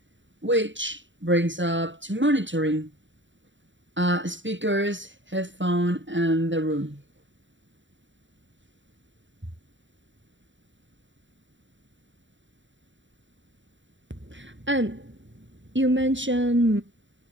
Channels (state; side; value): late; left; 0.54 ms